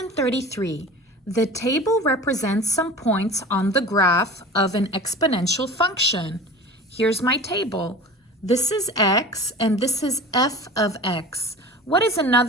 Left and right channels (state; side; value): normal; both; correlation 0.37